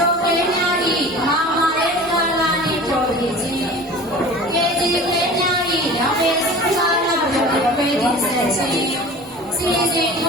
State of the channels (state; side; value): normal; both; correlation 0.39